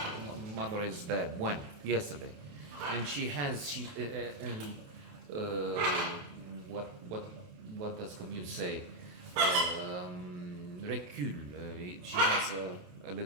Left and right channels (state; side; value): late; left; 28 ms